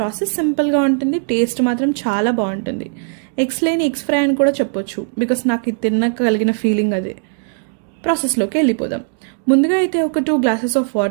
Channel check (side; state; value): left; silent; 62 dB below the other